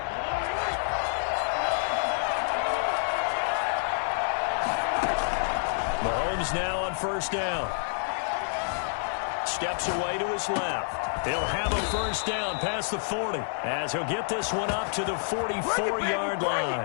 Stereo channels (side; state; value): right; silent; 59 dB below the other